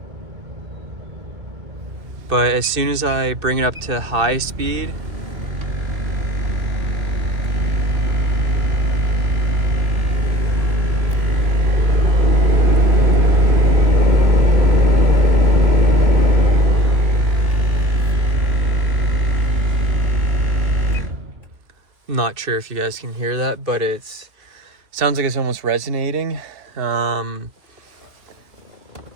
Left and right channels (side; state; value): left; late; 2.6 ms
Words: But as soon as I bring it up to high speed, not sure if you guys can hear that, but sounds like it's almost resonating.